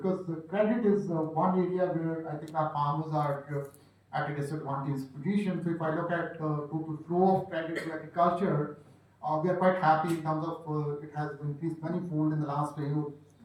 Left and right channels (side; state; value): both; identical; correlation 1.00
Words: the credit is one area where I think our farmers are at a disadvantaged position. So if I look at total flow of credit to agriculture, we are quite happy in terms of it has increased manifold in the last 2